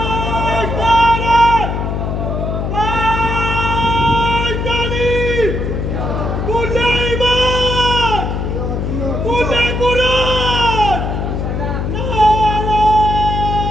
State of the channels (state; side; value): noise; left; hum, 2 dB below the sound